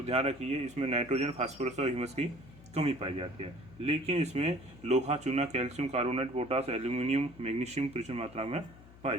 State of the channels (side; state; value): left; noise; hum, 21 dB below the sound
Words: ध्यान रखिए, इसमें नाइट्रोजन, फास्फोरस और ह्यूमस की कमी पाई जाती है, लेकिन इसमें लोहा, चूना, calcium, carbonate, potash, aluminium, magnesium प्रचुर मात्रा में पाई